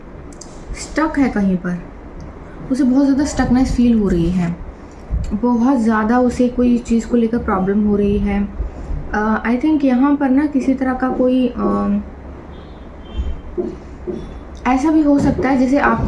स्टक है कहीं पर, उसे बहुत ज़्यादा स्टकनेस फील हो रही है, बहुत ज़्यादा उसे कोई चीज़ को लेकर प्रॉब्लम हो रही है। आई थिंक यहाँ पर ना किसी तरह का कोई ऐसा भी हो सकता है जैसे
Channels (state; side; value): identical; both; correlation 1.00